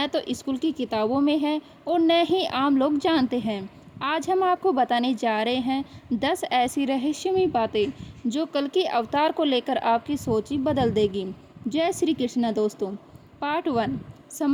तो स्कूल की किताबों में है और न ही आम लोग जानते हैं। आज हम आपको बताने जा रहे हैं 10 ऐसी रहस्यमयी बातें जो कल्कि अवतार को लेकर आपकी सोच ही बदल देगी। जय श्री कृष्णा दोस्तों। पार्ट 1,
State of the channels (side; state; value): both; identical; correlation 1.00